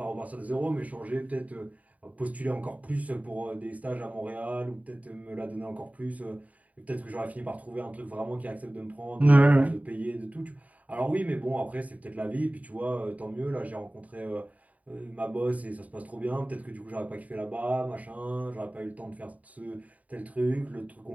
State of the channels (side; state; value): left; late; 0.070 ms